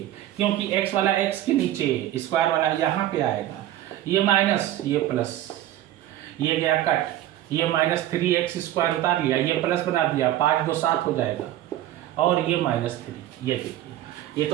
क्योंकि x वाला x के नीचे, स्क्वायर वाला यहाँ पे आएगा, ये माइनस, ये प्लस, ये गया कट, ये माइनस 3x² उतार लिया, ये प्लस बना दिया, 5 2 7 हो जाएगा, और ये माइनस 3, ये देखिए, ये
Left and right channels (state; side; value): quieter; left; 13.3 dB